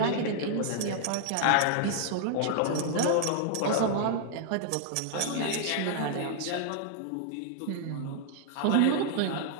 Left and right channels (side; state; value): both; different; correlation -0.01